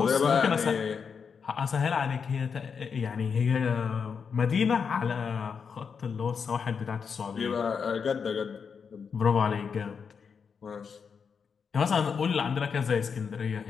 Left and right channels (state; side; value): quieter; right; 6.2 dB